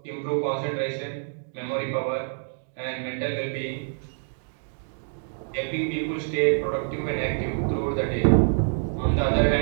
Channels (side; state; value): left; silent; digital silence